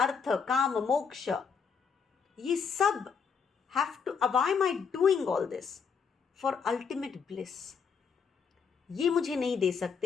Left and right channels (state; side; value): quieter; right; 6.2 dB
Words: Kama, Moksha. Ye sab have to, why am I doing all this? For ultimate bliss. ये मुझे नहीं दे